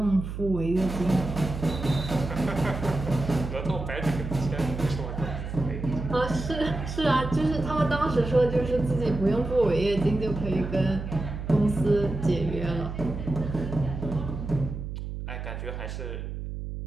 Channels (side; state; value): right; noise; hum, 7 dB below the sound